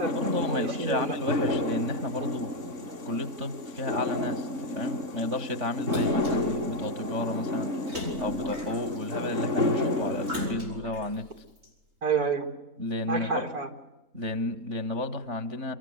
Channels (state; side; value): late; left; 3.9 ms